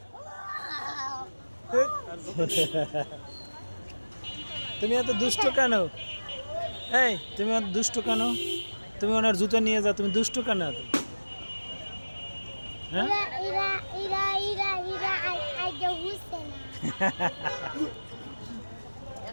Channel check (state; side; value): inverted; both; correlation -1.00